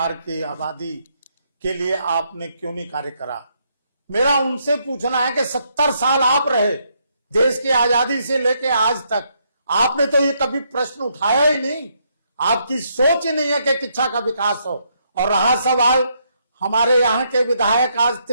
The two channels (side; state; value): both; inverted; correlation -0.75